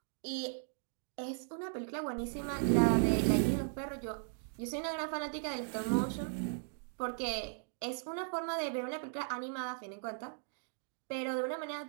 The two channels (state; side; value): silent; left; digital silence